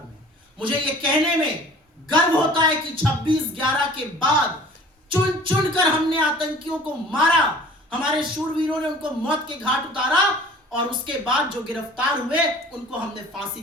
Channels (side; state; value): both; normal; correlation 0.47